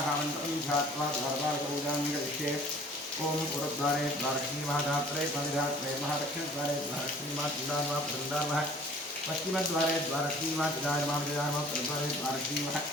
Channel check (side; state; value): both; normal; correlation 0.51